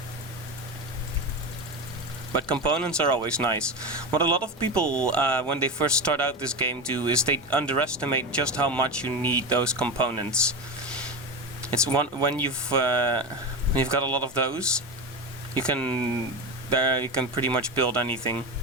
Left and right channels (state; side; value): normal; both; correlation 0.20